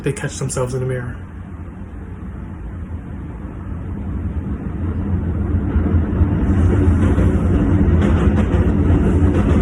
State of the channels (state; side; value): identical; both; correlation 1.00